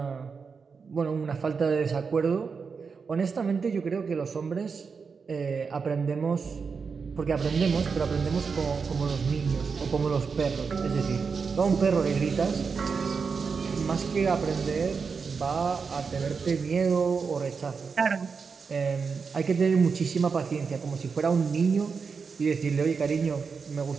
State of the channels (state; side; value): quieter; left; 5.4 dB